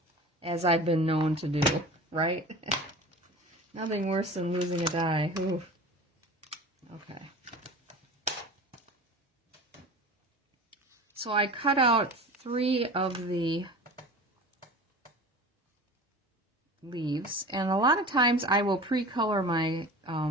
as I've been known to do, right? Nothing worse than losing a die. Ooh. Okay. So I cut out 3 of the leaves, and a lot of times I will pre-color my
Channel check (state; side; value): normal; both; correlation 0.36